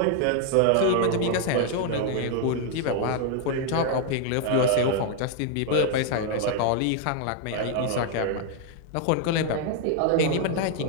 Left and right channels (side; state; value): both; different; correlation 0.01